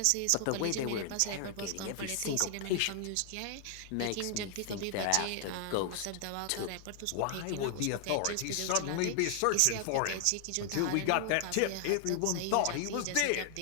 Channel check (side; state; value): both; different; correlation 0.00